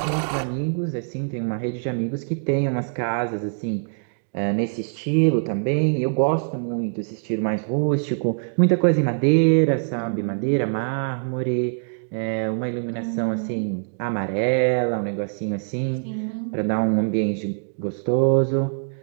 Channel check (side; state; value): left; silent; digital silence